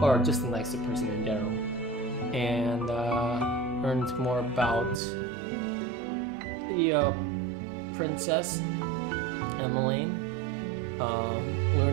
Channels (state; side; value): drops out; left; at 5.0 s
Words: or just a nicer person in general, and learned more about the princess Emmeline.